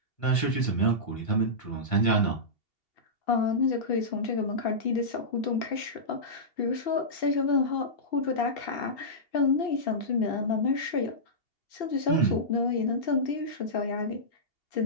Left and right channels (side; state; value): right; late; 2.7 ms